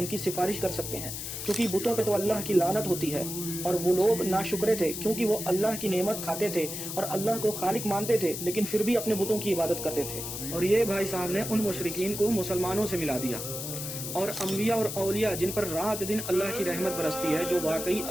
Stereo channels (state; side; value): noise; left; hiss, 6 dB below the sound